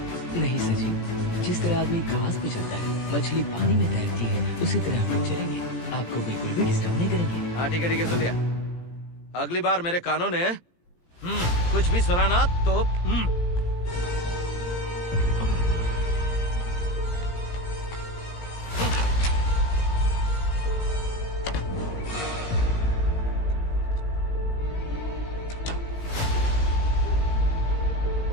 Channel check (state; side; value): late; right; 17 ms